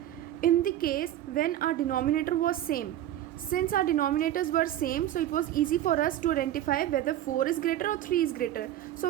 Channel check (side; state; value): left; quieter; 12.5 dB